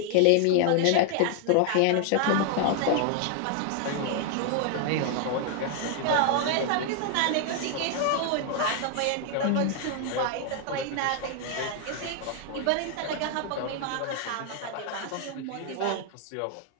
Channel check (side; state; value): both; different; correlation 0.00